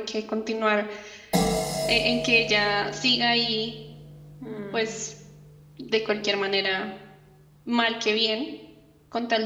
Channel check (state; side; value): identical; both; correlation 1.00